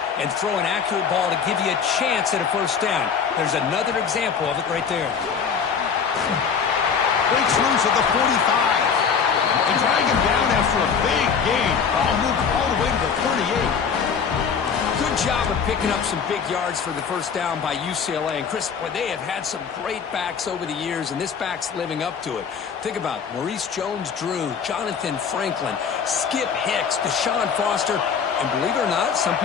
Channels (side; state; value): right; quieter; 6.5 dB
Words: and throw an accurate ball to give you a chance at a first down. There's another example of it right there. Breaks loose at the 45. And drag him down after a big gain. Ball moved all the way to the 38. Good job of picking up some big yards for the first down by UCLA. And Chris, boy, they have had some great backs over the years, and this back's living up to it. Think about Maurice Jones-Drew, Jonathan Franklin, Skip Hicks, Deshaun Foster, and believe it or not, some